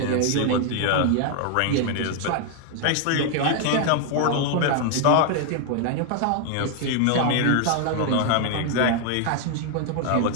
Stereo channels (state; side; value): different; both; correlation 0.00